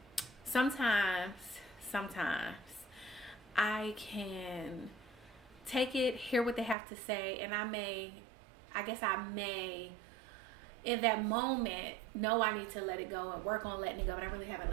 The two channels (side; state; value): left; drops out; at 6.8 s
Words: sometimes I can take it, hear what they have to say, and I may in that moment know I need to let it go and work on letting it go, but I really haven't